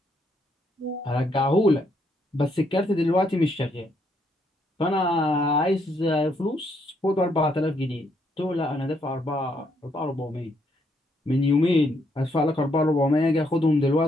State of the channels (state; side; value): normal; both; correlation 0.73